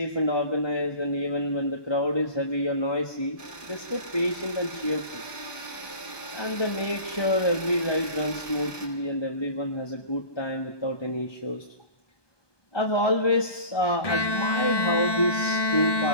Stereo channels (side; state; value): right; late; 1.2 ms